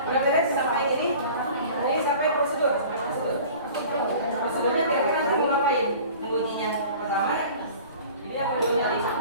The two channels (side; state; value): both; inverted; correlation -0.44